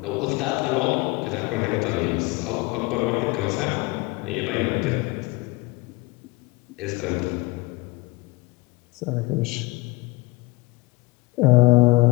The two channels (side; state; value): right; quieter; 23.6 dB